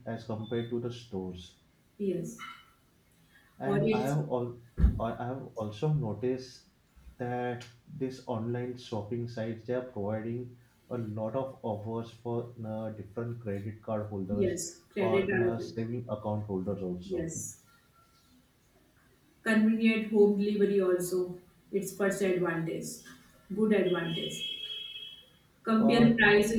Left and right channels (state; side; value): identical; both; correlation 1.00